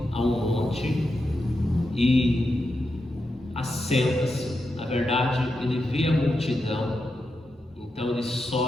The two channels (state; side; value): normal; both; correlation 0.87